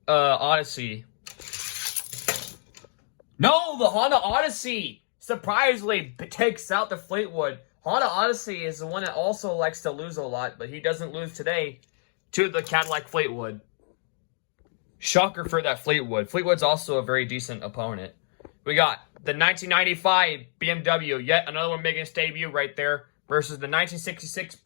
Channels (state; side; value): silent; right; 60 dB below the other